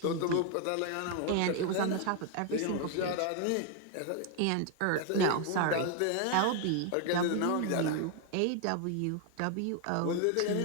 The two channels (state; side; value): different; both; correlation 0.01